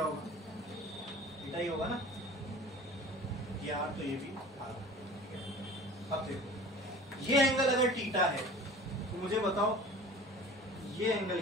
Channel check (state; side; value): normal; both; correlation 0.42